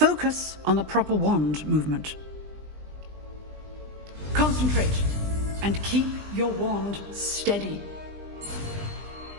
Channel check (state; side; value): late; left; 20 ms